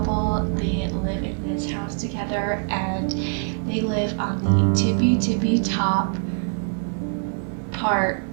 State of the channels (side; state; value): left; silent; 63 dB below the other